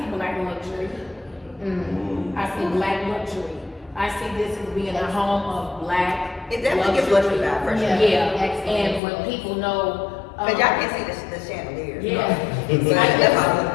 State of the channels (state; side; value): drops out; right; at 9.0 s